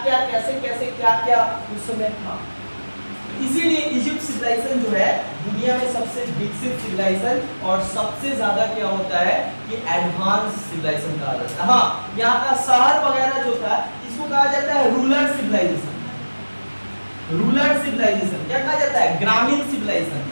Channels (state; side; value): inverted; both; correlation -1.00